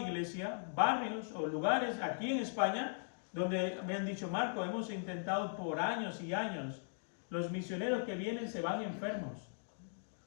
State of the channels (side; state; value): right; silent; digital silence